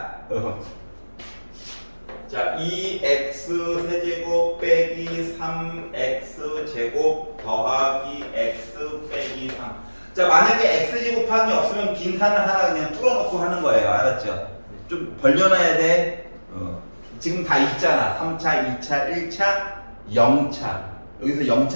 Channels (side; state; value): both; inverted; correlation -1.00